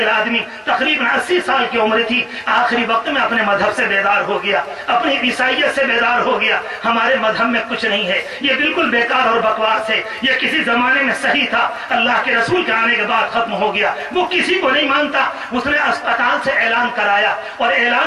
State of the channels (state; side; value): identical; both; correlation 1.00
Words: آدمی، تقریباً 80 سال کی عمر تھی. آخری وقت میں اپنے مذہب سے بیدار ہو گیا، اپنی عیسائیت سے بیدار ہو گیا. ہمارے مذہب میں کچھ نہیں ہے، یہ بالکل بیکار اور بکواس ہے، یہ کسی زمانے میں صحیح تھا، اللہ کے رسول کے آنے کے بعد ختم ہو گیا. وہ کسی کو نہیں مانتا. اس نے اسپتال سے اعلان کرایا اور